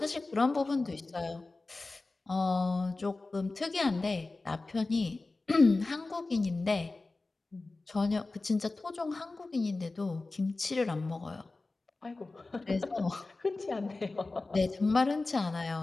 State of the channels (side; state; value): right; quieter; 3.4 dB